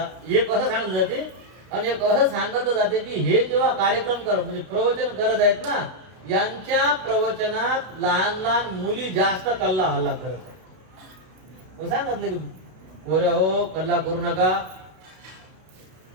एक असं सांगितलं जाते. आणि एक असं सांगितलं जाते की हे जेव्हा कार्यक्रम करत, म्हणजे प्रवचन करत आहेत ना, यांच्या प्रवचनात लहान लहान मुली जास्त कल्ला हल्ला करत आहेत. मग सांगितलं की पोऱ्या हो, कल्ला करू नका,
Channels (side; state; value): left; late; 32 ms